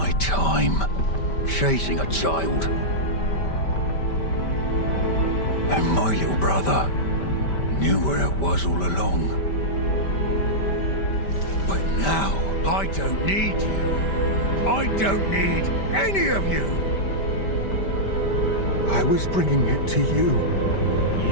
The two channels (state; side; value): late; right; 5.1 ms